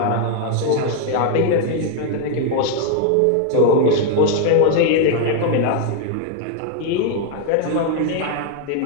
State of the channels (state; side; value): different; both; correlation 0.00